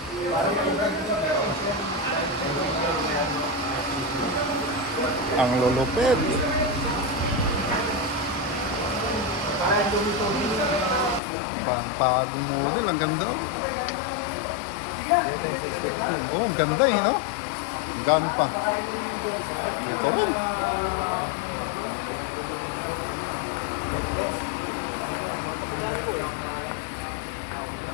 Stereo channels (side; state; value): right; drops out; at 11.2 s